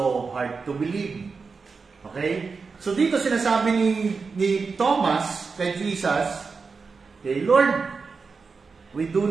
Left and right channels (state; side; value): quieter; left; 4.8 dB